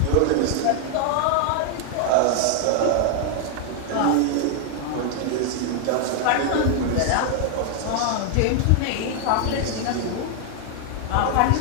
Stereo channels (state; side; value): different; both; correlation 0.00